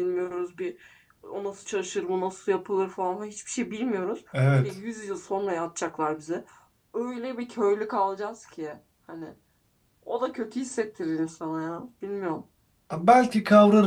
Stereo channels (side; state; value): both; identical; correlation 1.00